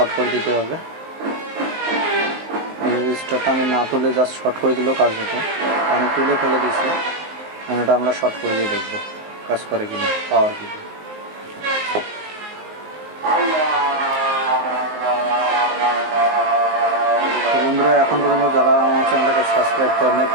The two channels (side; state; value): left; late; 19 ms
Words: করে দিতে হবে। রেজিস্টারটা আমি না তুলে জাস্ট শর্ট করে দিলেও কাজ হতো, আমি তুলে ফেলে দিয়েছি। এখন এটা আমরা শর্ট করে দিয়ে দেখবো কাজ করে কিনা, পাওয়ার কি। বন্ধুরা, এখন পর্যন্ত যারা আমার চ্যানেলটাকে সাবস্ক্রাইব করেন নাই,